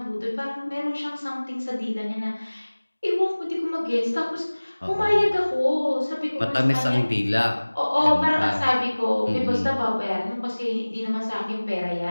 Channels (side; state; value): both; inverted; correlation -1.00